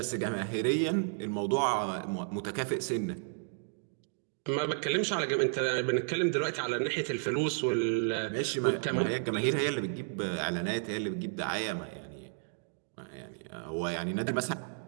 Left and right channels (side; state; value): left; silent; digital silence